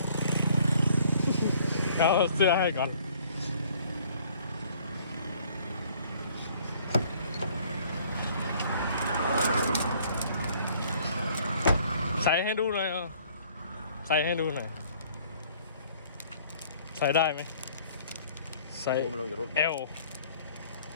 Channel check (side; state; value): both; inverted; correlation -0.58